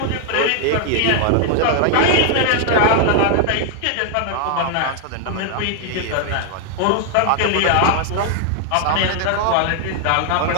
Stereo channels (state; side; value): different; both; correlation 0.00